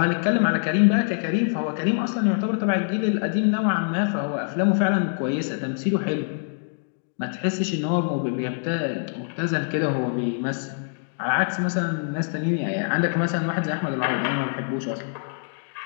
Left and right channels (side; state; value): right; silent; digital silence